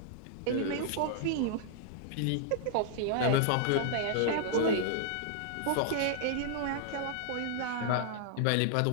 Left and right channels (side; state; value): both; different; correlation -0.01